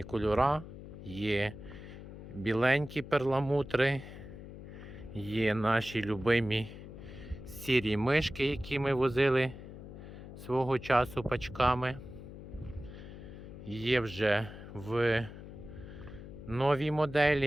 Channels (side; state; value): left; noise; hum, 13 dB below the sound